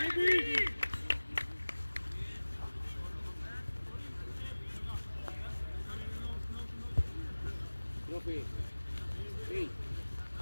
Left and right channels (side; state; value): both; inverted; correlation -1.00